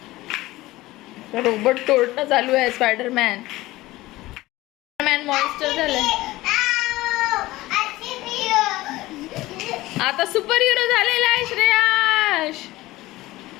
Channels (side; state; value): right; quieter; 18.3 dB